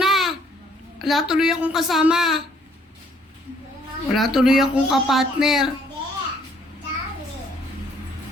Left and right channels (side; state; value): both; normal; correlation 0.64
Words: Wala tuloy akong kasama. Wala tuloy akong kapartner.